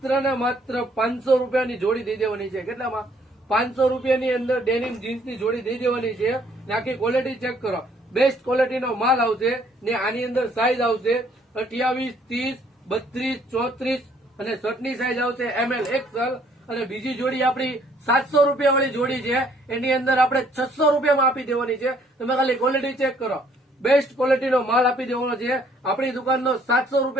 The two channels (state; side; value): normal; both; correlation 0.63